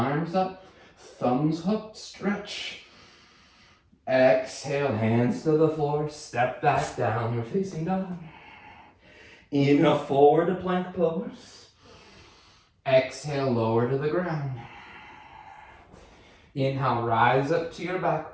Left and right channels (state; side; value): identical; both; correlation 1.00